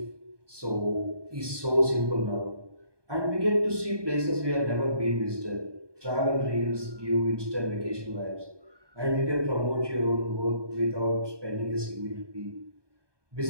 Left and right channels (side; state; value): left; late; 1.2 ms